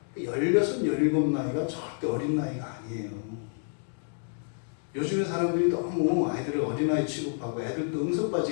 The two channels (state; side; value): silent; right; 59 dB below the other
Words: 16, 17 나이가 절대 어린 나이가 아니에요. 요즘에 사람들이 너무 아이들을 어린아이 취급하고 애들도